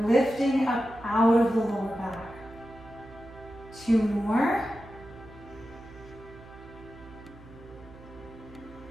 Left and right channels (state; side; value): noise; right; hum, 19 dB below the sound